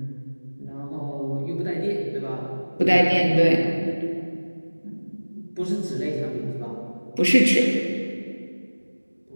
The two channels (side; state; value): both; inverted; correlation -1.00